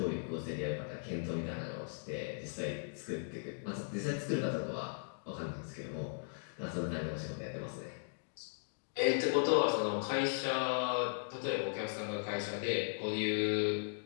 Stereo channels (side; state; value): right; silent; digital silence